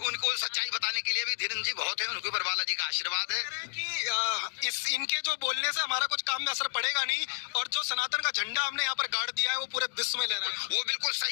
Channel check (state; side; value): silent; right; digital silence